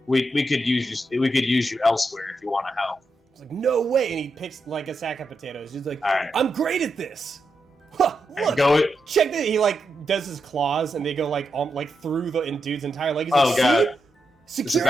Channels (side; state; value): both; normal; correlation 0.85